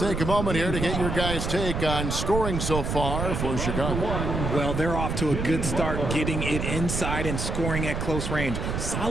a moment here to get your guys' take on scoring so far for Chicago. Well, they're off to a good start getting it inside and scoring at close range.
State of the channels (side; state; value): right; noise; rumble, 2 dB below the sound